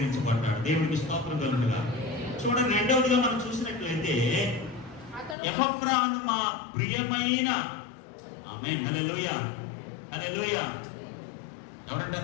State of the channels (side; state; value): right; drops out; at 5.4 s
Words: దేవునికి స్తోత్రం కలుగునుగా. చూడండి, రెండవదిగా మనం చూసినట్లయితే ఎపఫ్రా మా ప్రియమైన, ఆమేన్, హల్లెలూయా, హల్లెలూయా. ఎవరంటే